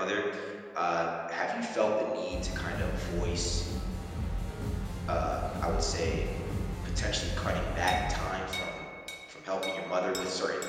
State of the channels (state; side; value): identical; both; correlation 1.00